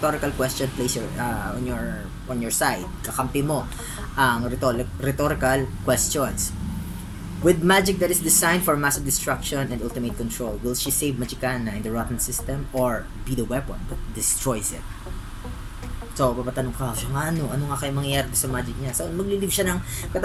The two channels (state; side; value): identical; both; correlation 1.00